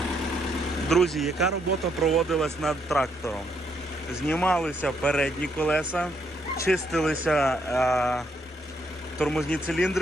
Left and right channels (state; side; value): normal; both; correlation 0.74